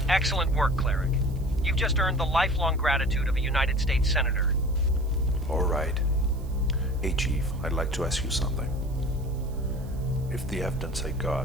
Excellent work, Cleric. You've just earned the lifelong gratitude of a United States Senator. All right. Hey, Chief, I'd like to ask you something. If the evidence I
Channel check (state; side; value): noise; right; hiss, 26 dB below the sound